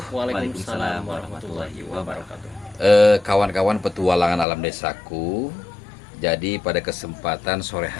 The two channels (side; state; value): right; drops out; at 4.5 s